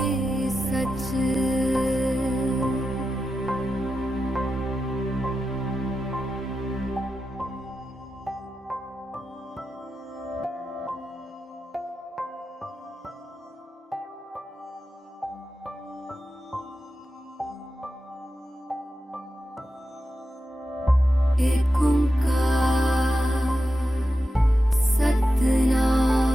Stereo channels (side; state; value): both; normal; correlation 0.90